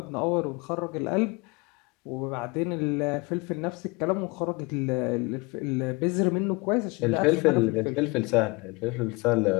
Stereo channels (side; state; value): right; quieter; 26.3 dB